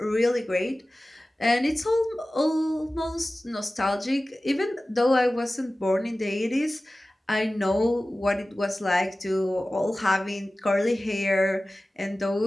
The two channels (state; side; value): normal; both; correlation 0.96